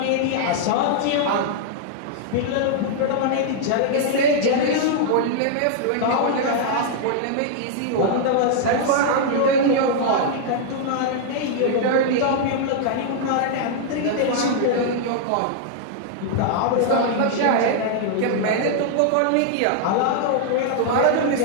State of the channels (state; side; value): different; both; correlation -0.01